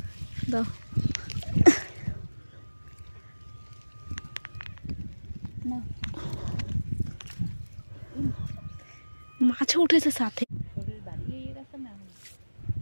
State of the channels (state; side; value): inverted; both; correlation -1.00